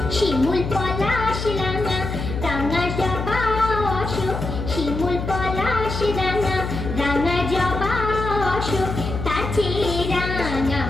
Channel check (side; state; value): left; noise; hum, 5 dB below the sound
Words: শিমুল পলাশ রাঙা, রাঙা জবা অশোক, শিমুল পলাশ রাঙা, রাঙা জবা অশোক, তার চেয়ে রাঙা